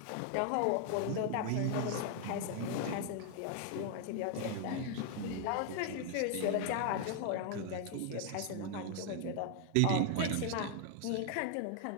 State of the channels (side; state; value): both; different; correlation 0.00